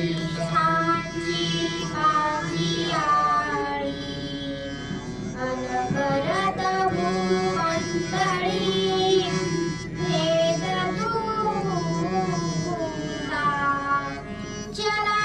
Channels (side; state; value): both; identical; correlation 1.00